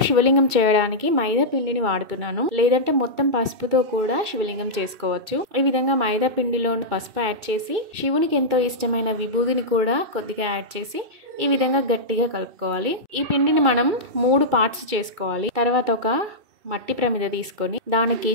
శివలింగం చేయడానికి మైదా పిండిని వాడుతున్నాను, లేదంటే మొత్తం పసుపుతో కూడా శివలింగం చేసుకోవచ్చు. ఈ విధంగా మైదా పిండిలో పసుపు యాడ్ చేసి శివునికి ఎంతో ఇష్టమైన విభూదిని కూడా కొద్దిగా యాడ్ చేసి ఈ విధంగా గట్టిగా కలుపుకోవాలి. ఈ పిండిని మనం 3 పార్ట్స్ చేసుకోవాలి. తర్వాత ఒక మట్టి ప్రమిద తీసుకొని దానికి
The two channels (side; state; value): left; late; 2.3 ms